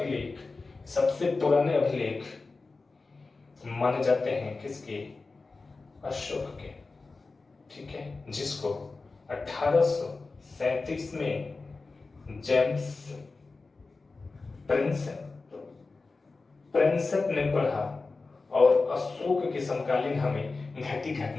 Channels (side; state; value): right; quieter; 3.8 dB